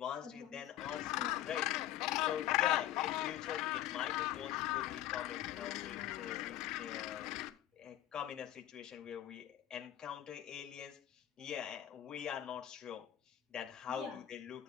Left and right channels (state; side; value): quieter; right; 12.6 dB